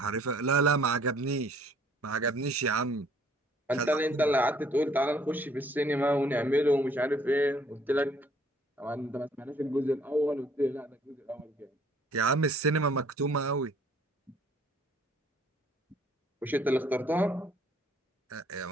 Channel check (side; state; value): both; normal; correlation 0.60